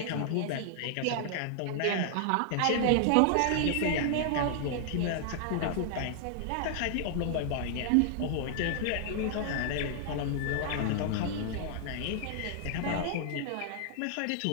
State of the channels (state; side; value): different; both; correlation 0.00